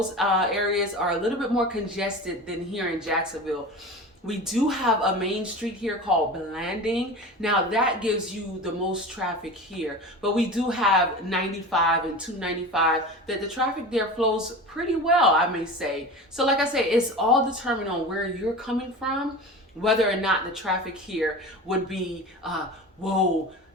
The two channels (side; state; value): both; normal; correlation 0.32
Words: areas are a little bit more congested than here in Jacksonville. We do have a main street here called Blanding. Now that gives you the most traffic here, but we do have 95 and 295 that the traffic there flows pretty well, I may say. So like I say, it's all determined on where you're coming from, whether or not the traffic here would be,